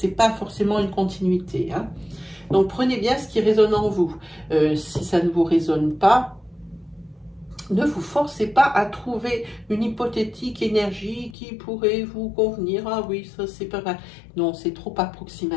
pas forcément une continuité. Hein. Donc prenez bien ce qui résonne en vous. Si ça ne vous résonne pas, ne vous forcez pas à trouver une hypothétique énergie qui pourrait vous convenir. Ah oui, ça c'est pas mal. Non, c'est trop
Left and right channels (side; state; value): right; drops out; at 11.4 s